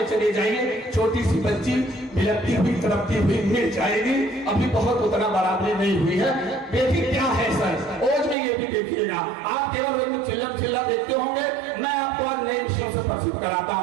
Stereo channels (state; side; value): drops out; left; at 8.3 s